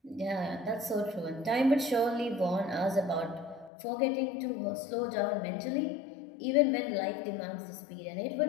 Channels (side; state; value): right; drops out; at 3.7 s